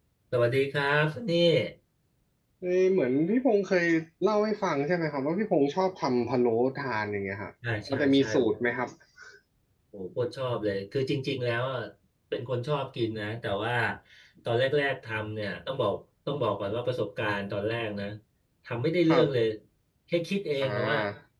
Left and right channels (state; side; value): identical; both; correlation 1.00